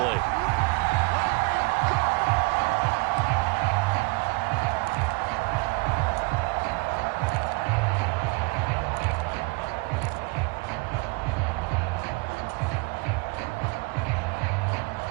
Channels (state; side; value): quieter; left; 28.1 dB